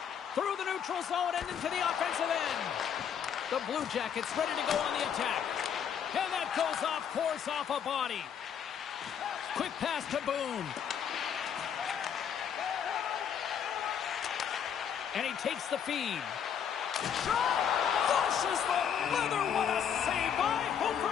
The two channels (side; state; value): right; quieter; 8.2 dB